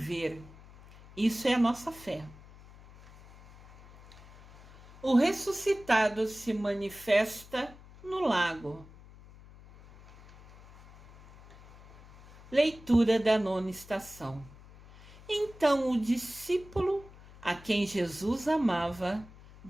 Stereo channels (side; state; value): left; noise; hum, 21 dB below the sound